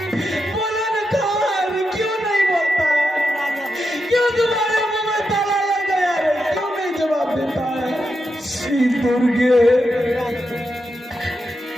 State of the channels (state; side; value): normal; both; correlation 0.86